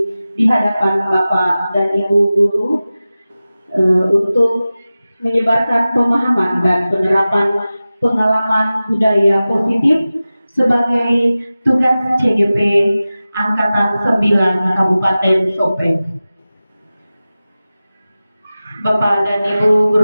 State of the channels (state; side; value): inverted; both; correlation -0.96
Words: di hadapan Bapak dan Ibu guru untuk menyebarkan pemahaman dan penerapan pengalaman budaya positif sebagai tugas CGP Angkatan 9 Kabupaten Sopeng. Bapak dan Ibu